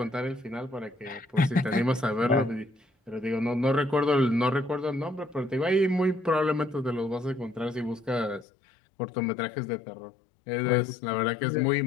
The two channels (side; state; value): right; drops out; at 8.5 s